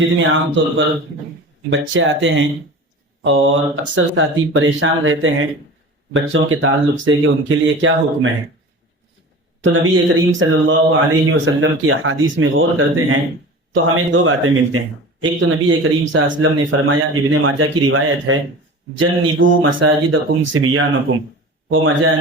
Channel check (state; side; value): normal; both; correlation 0.36